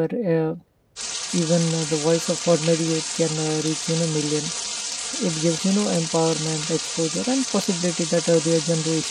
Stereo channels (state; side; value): identical; both; correlation 1.00